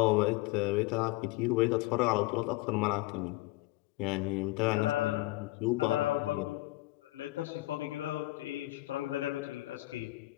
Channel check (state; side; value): quieter; right; 19.7 dB